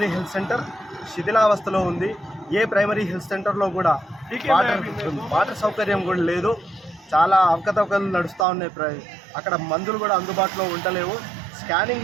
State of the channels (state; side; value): drops out; left; at 8.5 s